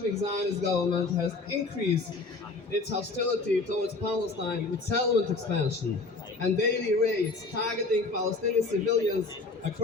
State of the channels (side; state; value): right; quieter; 3.7 dB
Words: Zionist government has increased its hostility towards Palestine with settlement expansion and daily raids targeting Palestinian civilians